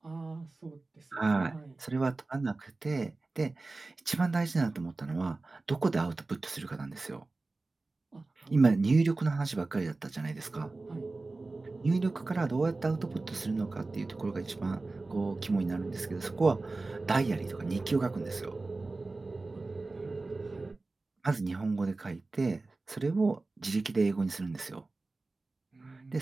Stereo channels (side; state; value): left; quieter; 3.4 dB